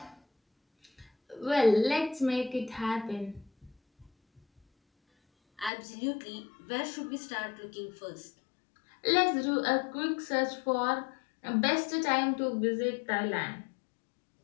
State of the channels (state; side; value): drops out; right; at 5.7 s